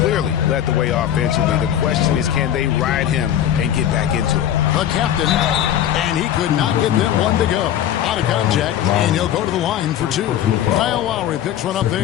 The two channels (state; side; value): quieter; right; 10.8 dB